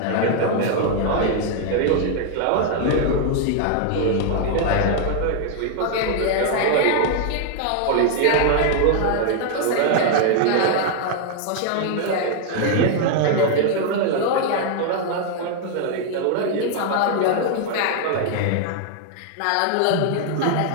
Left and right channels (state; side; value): different; both; correlation 0.00